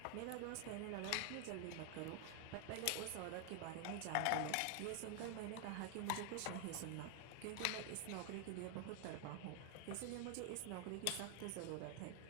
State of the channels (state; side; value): different; both; correlation 0.00